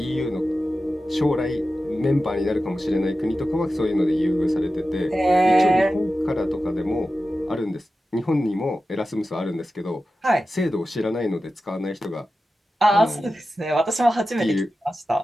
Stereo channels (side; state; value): both; normal; correlation 0.93